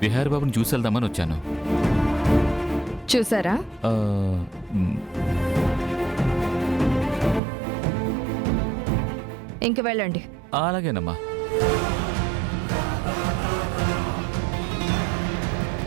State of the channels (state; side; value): drops out; left; at 7.4 s